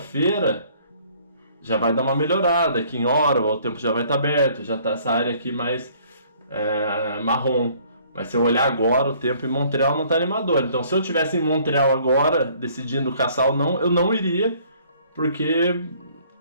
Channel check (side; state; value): both; inverted; correlation -0.59